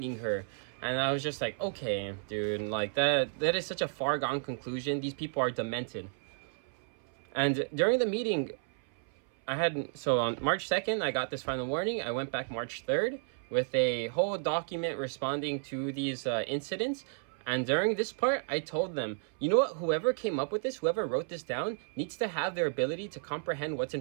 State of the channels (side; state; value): left; silent; 56 dB below the other